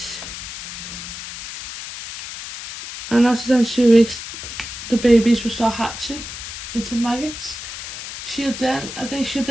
And after them 2 weeks, the babies will start hatching into maggots. I think she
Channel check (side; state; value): left; noise; hiss, 9 dB below the sound